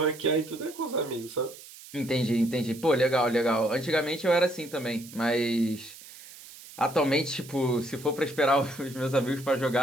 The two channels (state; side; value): noise; right; hiss, 18 dB below the sound